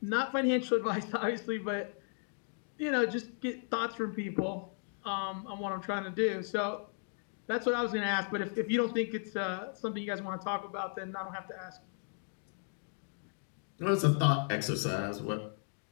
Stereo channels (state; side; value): silent; right; 54 dB below the other